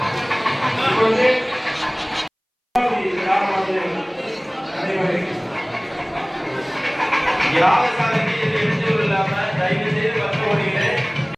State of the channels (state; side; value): identical; both; correlation 1.00